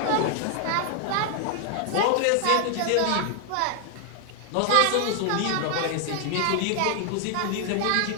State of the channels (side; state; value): both; different; correlation 0.00